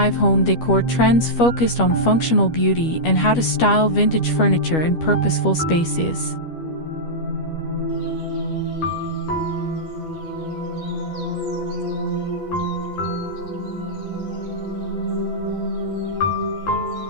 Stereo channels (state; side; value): late; right; 12 ms